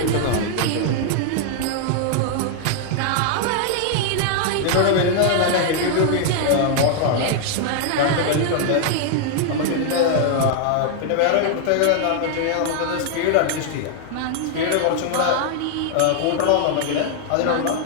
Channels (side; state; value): both; different; correlation -0.01